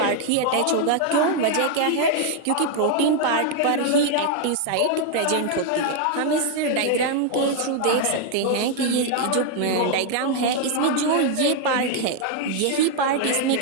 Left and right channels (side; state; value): both; different; correlation 0.00